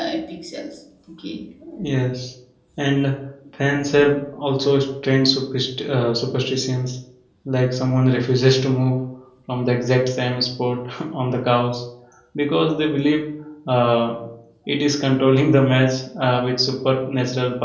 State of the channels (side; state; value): both; identical; correlation 1.00